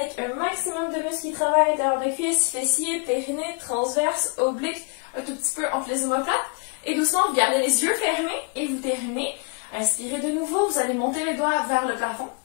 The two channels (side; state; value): right; quieter; 31.8 dB